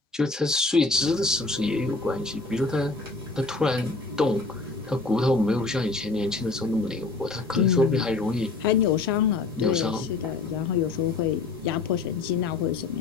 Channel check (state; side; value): quieter; right; 3.7 dB